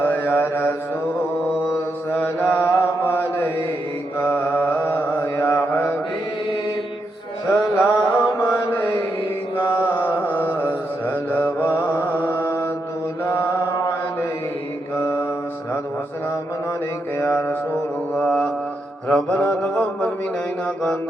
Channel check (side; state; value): both; normal; correlation 0.82